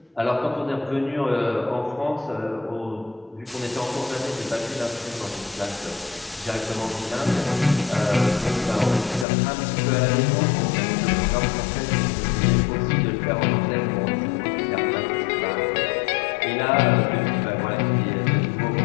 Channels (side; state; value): right; drops out; at 9.2 s